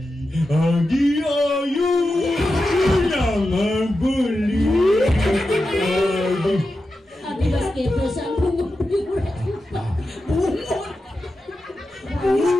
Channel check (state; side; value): normal; both; correlation 0.91